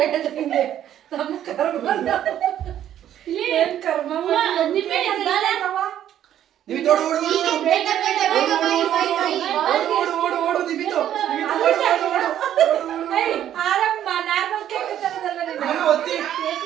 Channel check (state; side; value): quieter; left; 11.0 dB